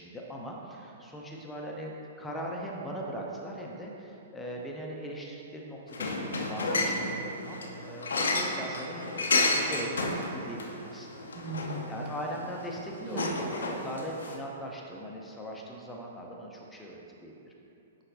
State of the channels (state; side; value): inverted; both; correlation -0.42